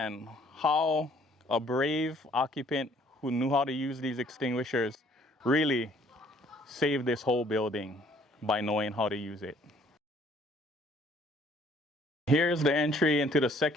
how a brave occupant who knew how to use these extinguishers really saved this whole building by knowing how to use it. Here's the entry into the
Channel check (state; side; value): normal; both; correlation 0.60